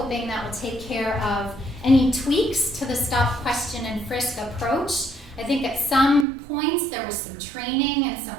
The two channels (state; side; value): drops out; left; at 6.2 s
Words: that will take care of any tweaks to the stop, question, and frisk approach. I think at some points there was some training and some